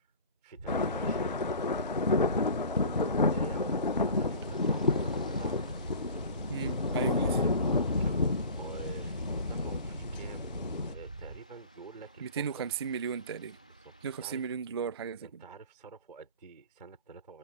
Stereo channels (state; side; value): inverted; both; correlation -0.40